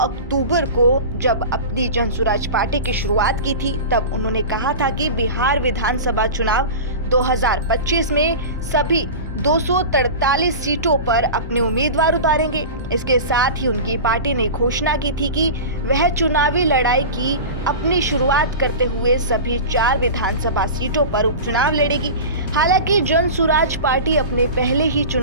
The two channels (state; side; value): inverted; both; correlation -0.30